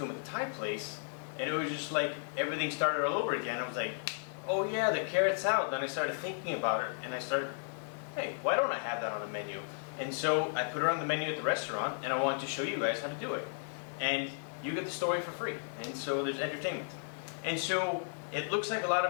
him at the Thai place, and it was just like everything started all over again. I was like, oh yeah, the carrot salad. Then I started thinking about it, and I started, hey, why don't I have that on the menu? And so I put it on the menu at the restaurant, and I wanted to show you guys how to do it. And you get the story for free. And so there's entertainment. And so it looks like a lot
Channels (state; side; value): silent; right; digital silence